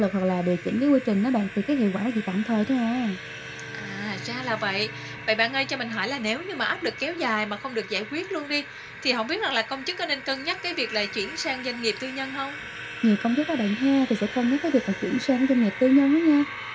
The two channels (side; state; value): both; identical; correlation 1.00